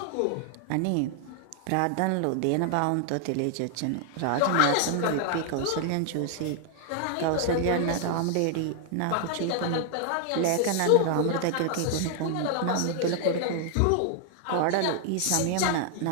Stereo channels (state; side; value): different; both; correlation 0.00